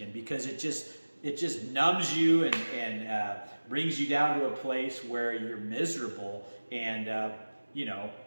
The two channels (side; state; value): both; inverted; correlation -1.00